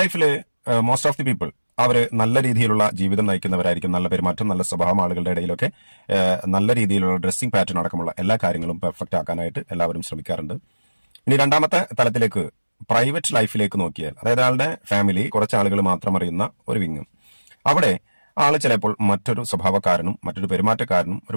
ലൈഫിൽ മോസ്റ്റ് ഓഫ് ദി പീപ്പിൾ അവര് നല്ല രീതിയിലുള്ള ജീവിതം നയിക്കുന്നവരായിരിക്കും. നല്ല പെരുമാറ്റം, നല്ല സ്വഭാവം, ആളുകളുടെ ഇടയിലൊക്കെ നല്ല രീതിയിലുള്ള ഡ്രസ്സിംഗ് പാറ്റേൺ അടക്കമുള്ള എല്ലാ കാര്യങ്ങളും പെർഫെക്റ്റ് ആക്കാനായിട്ട് എല്ലാവരും ശ്രമിക്കാറുണ്ട്. ഇനി രണ്ടാമത്തെ തലത്തിലേക്ക്, പ്രൈവറ്റ് ലൈഫിലേക്ക് നോക്കിയാൽ, അതായത് ആളുടെ ഫാമിലി, കുറച്ച് ആളുകൾ മാത്രം അറിയുന്ന ഒരു വിങ്, അവിടെ ആള് ചിലപ്പോൾ മറ്റൊരു സ്വഭാവക്കാരനും മറ്റൊരു പെരുമാറ്റക്കാരനും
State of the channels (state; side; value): inverted; both; correlation -1.00